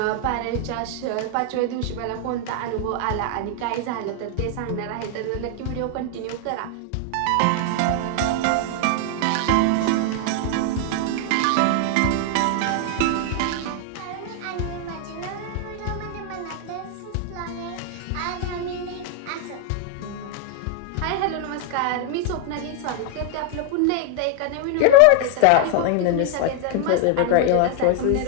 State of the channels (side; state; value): both; different; correlation 0.00